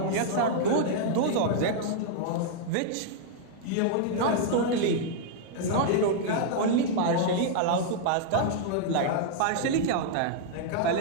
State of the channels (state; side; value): different; both; correlation -0.01